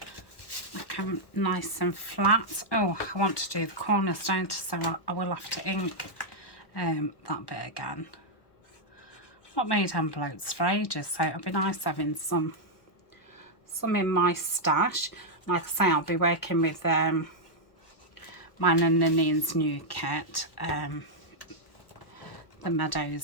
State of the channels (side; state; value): right; late; 1.1 ms